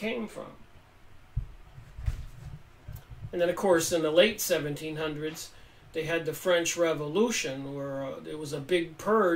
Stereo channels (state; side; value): identical; both; correlation 1.00